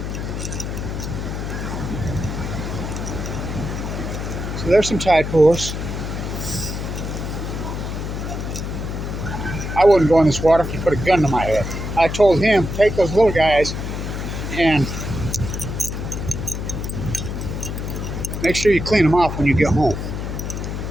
So there's some tide pools. I wouldn't go in this water if you put a gun to my head. I told him, take those little guys and make sure you clean them off when you get home.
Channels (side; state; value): left; noise; hum, 4 dB below the sound